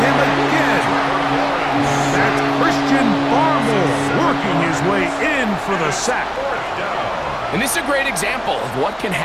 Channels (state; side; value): identical; both; correlation 1.00